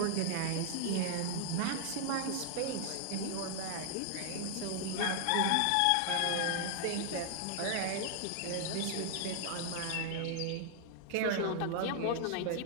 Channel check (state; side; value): different; both; correlation -0.01